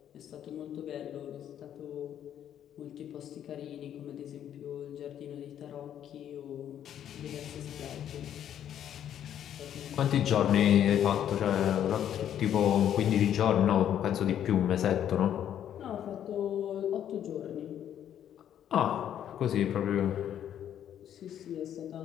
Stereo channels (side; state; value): right; quieter; 10.2 dB